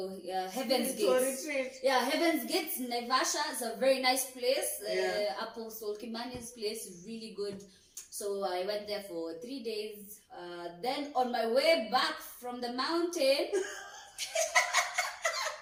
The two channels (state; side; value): identical; both; correlation 1.00